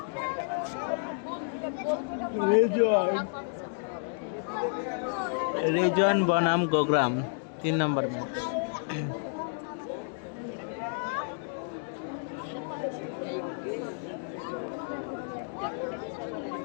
রেজন বনাম গোগ্রাম 3 নম্বর ম্যাচ।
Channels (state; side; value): silent; right; digital silence